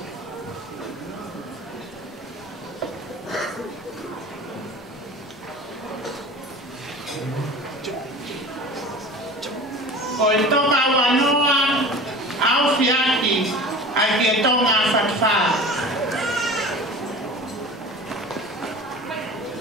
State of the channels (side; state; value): both; normal; correlation 0.37